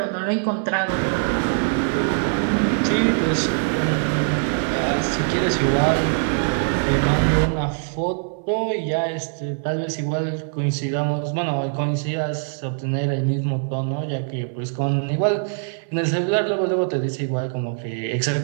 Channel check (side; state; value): left; silent; 59 dB below the other